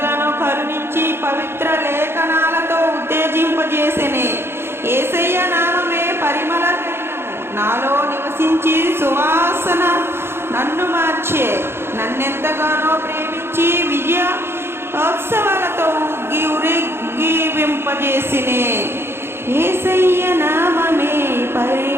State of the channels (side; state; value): left; late; 0.11 ms